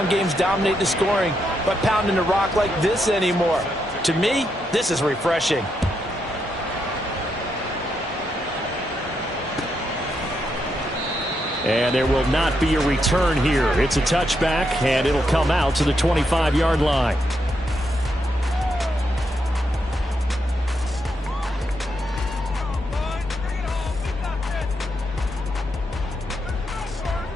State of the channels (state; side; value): normal; both; correlation 0.81